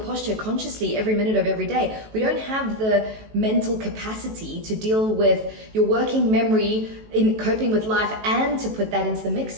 consciously every minute of every day. We don't have the mental capacity to deal with your working memory in coping with life and to put that into the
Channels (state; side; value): late; left; 18 ms